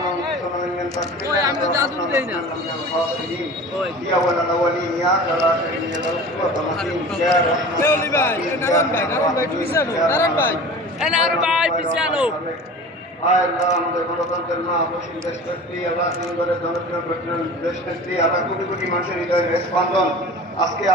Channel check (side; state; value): both; normal; correlation 0.38